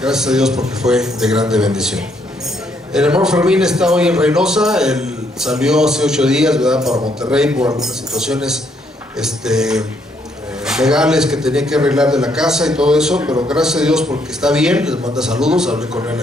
a Dios porque fue de grande bendición. El hermano Fermín está hoy en Reynosa. Él salió hace 8 días, ¿verdad?, para Monterrey por algunas situaciones legales que tenía que arreglar de la casa y todo eso, pero gracias a Dios porque está bien. Les manda saludos, hablé con él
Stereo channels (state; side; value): normal; both; correlation 0.72